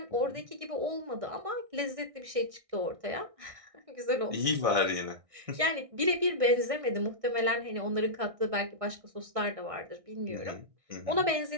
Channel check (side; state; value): left; late; 1.6 ms